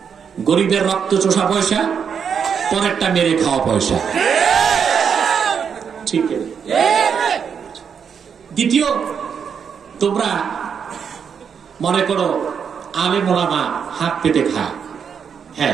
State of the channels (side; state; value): left; quieter; 7.0 dB